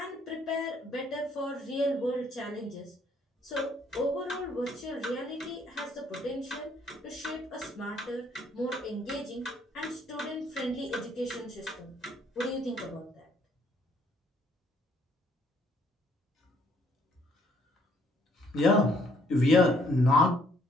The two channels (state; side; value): normal; both; correlation 0.66